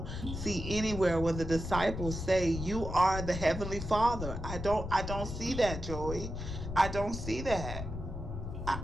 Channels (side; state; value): left; noise; rumble, 6 dB below the sound